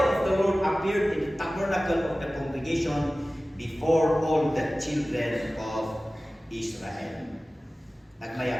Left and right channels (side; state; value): both; normal; correlation 0.97